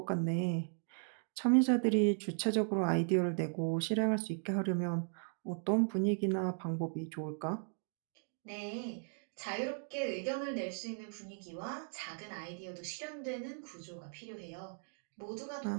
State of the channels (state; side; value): silent; left; 53 dB below the other